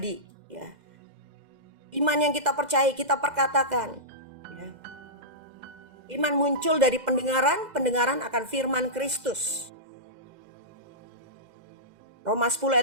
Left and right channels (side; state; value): left; late; 2.0 ms